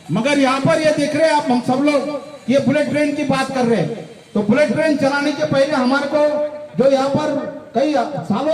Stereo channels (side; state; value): both; identical; correlation 1.00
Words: मगर यहाँ पर ये देख रहे हैं आप, हम सब लोग ये बुलेट ट्रेन की बात कर रहे हैं। तो बुलेट ट्रेन चलाने के पहले हमारे को जो यहाँ पर कई